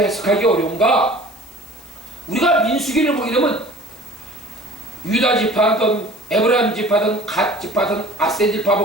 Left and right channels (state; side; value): noise; left; hiss, 24 dB below the sound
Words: 어려운가? 우리가 민수기를 보게 되면 유다 지파든 에브라임 지파든 갓 지파든 아셀 지파